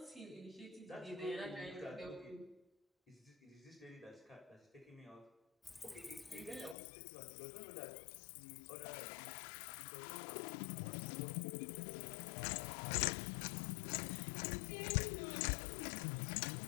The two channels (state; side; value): drops out; right; at 6.8 s